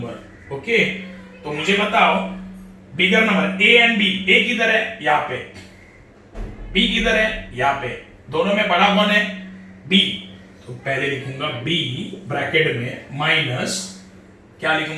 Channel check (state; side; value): identical; both; correlation 1.00